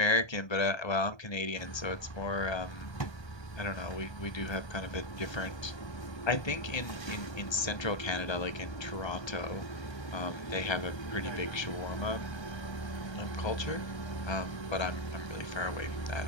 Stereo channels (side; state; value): right; late; 1.3 ms